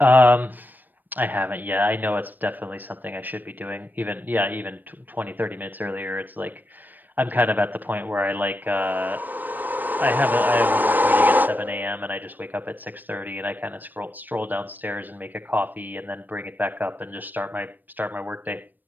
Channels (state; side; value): late; left; 0.088 ms